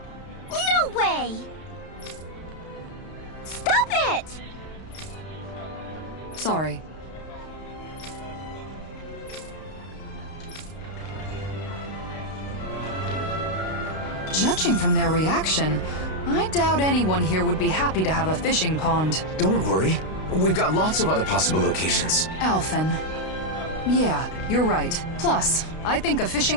No way! Stop it! Sorry. Judging from their reaction, I doubt anyone here would be happy to have a fishing pond. Don't worry. We've got lots of other possible locations. Alphen. Yeah, you're right. Plus, I think a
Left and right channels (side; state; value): right; late; 32 ms